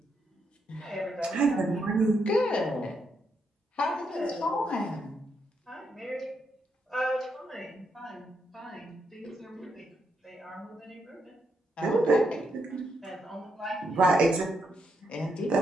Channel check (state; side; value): normal; both; correlation 0.80